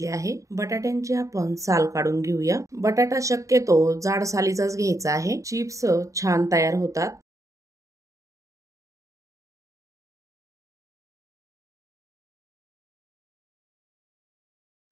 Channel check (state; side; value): late; left; 0.16 ms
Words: आहे। बटाट्यांची आपण साल काढून घेऊया। बटाटा शक्यतो जाड सालीचाच घ्यायचा आहे। चिप्स छान तयार होतात।